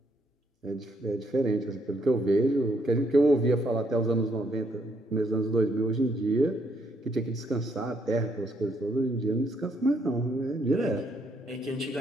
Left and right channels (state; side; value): normal; both; correlation 0.72